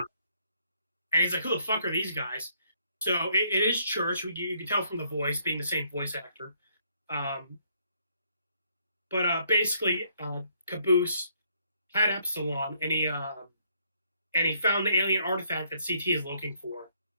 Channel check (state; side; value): inverted; both; correlation -0.69